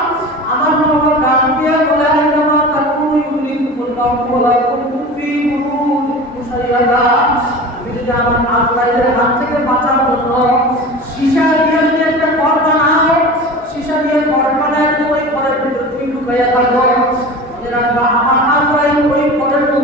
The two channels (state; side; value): normal; both; correlation 0.34